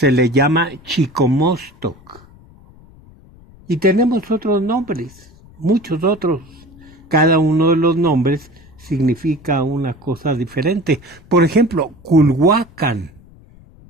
le llama Chicomostoc. Y tenemos otros nombres, muchos otros. Cada uno de los nombres significa una cosa diferente. Por ejemplo, Culhuacán,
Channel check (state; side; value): noise; left; rumble, 25 dB below the sound